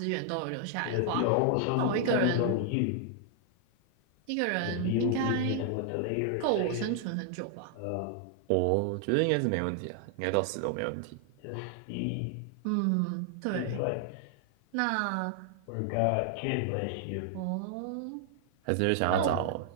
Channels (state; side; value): different; both; correlation 0.00